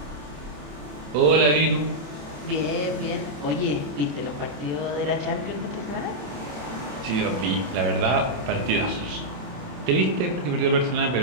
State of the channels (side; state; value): left; late; 27 ms